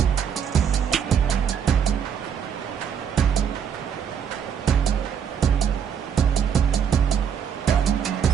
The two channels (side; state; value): left; quieter; 7.8 dB